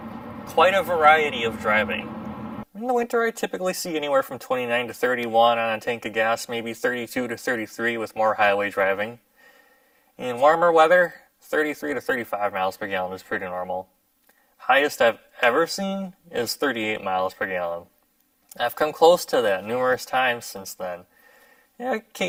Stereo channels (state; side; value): identical; both; correlation 1.00